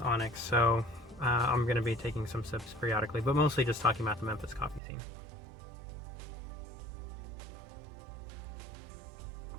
Onyx, so I'm going to be taking some sips periodically, but mostly just talking about the Memphis coffee scene.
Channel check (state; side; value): drops out; left; at 4.8 s